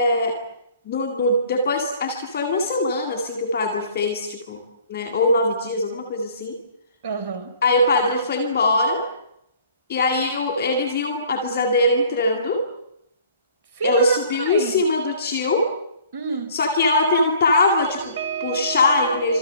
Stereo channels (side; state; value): both; inverted; correlation -0.54